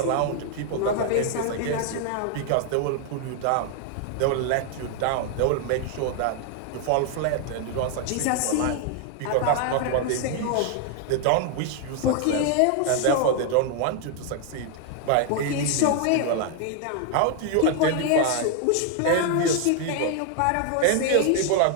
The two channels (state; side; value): different; both; correlation 0.00